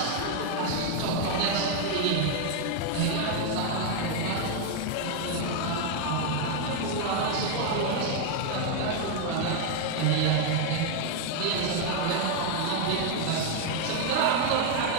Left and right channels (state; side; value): different; both; correlation 0.01